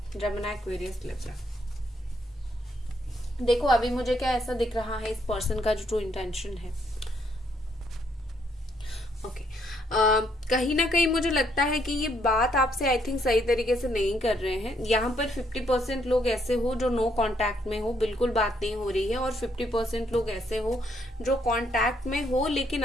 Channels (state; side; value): normal; both; correlation 0.72